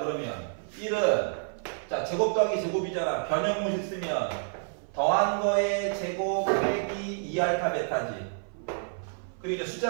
1은 제곱 더하기 제곱이잖아. 변형모식 쓰면 더한 거의 제곱 빼기 2알파 베타지. 그리고 이제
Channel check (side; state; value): left; silent; 55 dB below the other